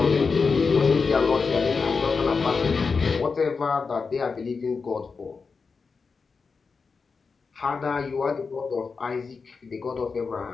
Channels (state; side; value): quieter; right; 4.9 dB